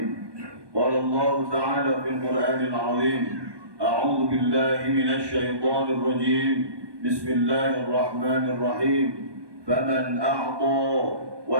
Qala Allah ta'ala fil Qur'anil 'azim, a'udzu billahi minasy syaithanir rajim. Bismillahir rahim. Faman a'ta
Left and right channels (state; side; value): late; left; 1.2 ms